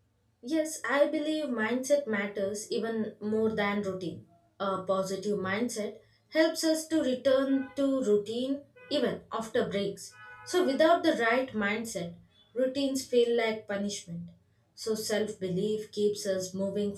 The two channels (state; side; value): identical; both; correlation 1.00